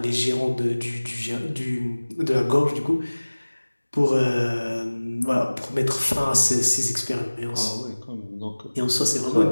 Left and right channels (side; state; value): both; inverted; correlation -1.00